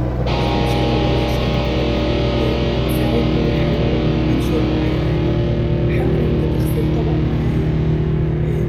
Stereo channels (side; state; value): both; identical; correlation 1.00